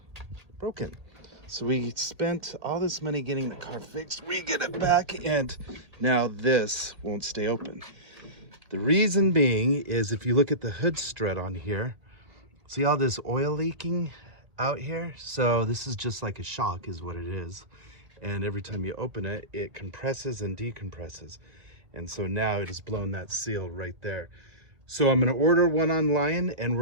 broken. So we spent all this money getting the car fixed. We get it back, and now this won't stay open. The reason being is if you look at the hood strut on here, see all this oil leaking out here? So this is just like a shock is what it is. And every time you open it, it compresses and decompresses. And so now it has blown that seal right there. So I'm gonna order one online, and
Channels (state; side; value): late; left; 1.8 ms